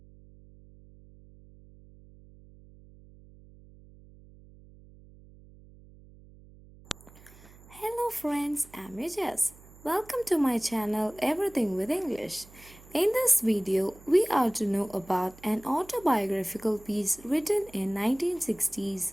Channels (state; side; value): noise; right; hum, 23 dB below the sound